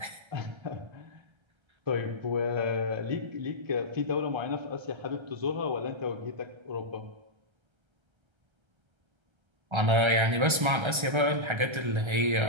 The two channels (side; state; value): left; late; 1.3 ms